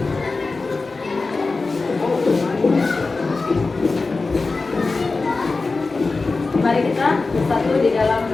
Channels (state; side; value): quieter; right; 3.8 dB